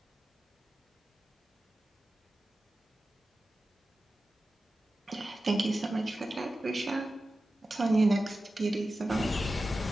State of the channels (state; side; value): normal; both; correlation 0.94